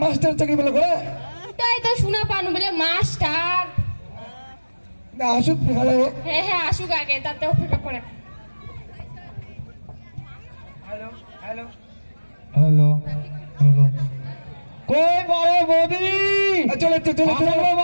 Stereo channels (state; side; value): inverted; both; correlation -1.00